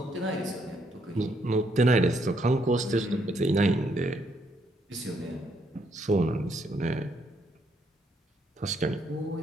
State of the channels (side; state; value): both; normal; correlation 0.73